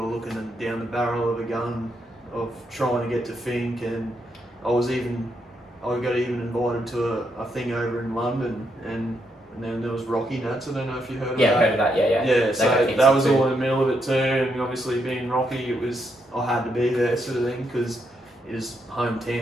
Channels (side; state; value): both; normal; correlation 0.79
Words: looking down the barrel of a gun of trying to get to Fink, and I got even invited to a thing over in London, and then there was Rocky Nats. I don't know if you heard of that. Yeah, I heard of that. Yeah. Yeah, so that was all in the middle of it too, and obviously being Rocky, I had to be there, sort of thing, because it is